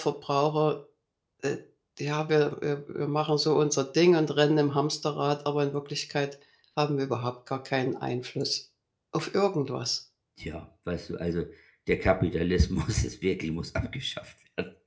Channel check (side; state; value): both; identical; correlation 1.00